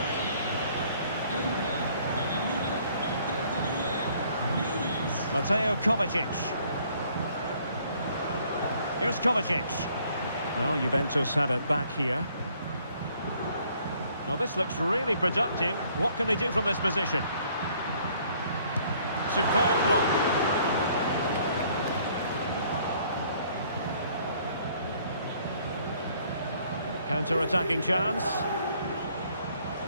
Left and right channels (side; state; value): both; inverted; correlation -0.62